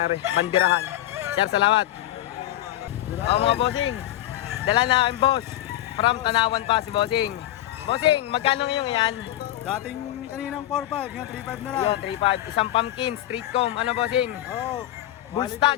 bandirahan. Sir, salamat. Mga bossing, dala na ang boss. From Tanawan pa si bossing. Bossing, magkano ngayon yan? Dating kaninang 4.5, ngayon 3.5 na lang. Yun, 3.5. Isang pumpkin, street comb. Ano bossing? Oo. Bull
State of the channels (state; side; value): quieter; right; 14.2 dB